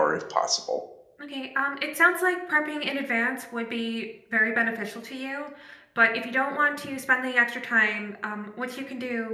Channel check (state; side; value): identical; both; correlation 1.00